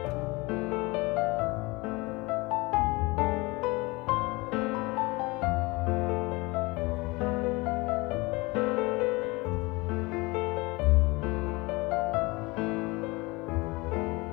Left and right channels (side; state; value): right; quieter; 24.4 dB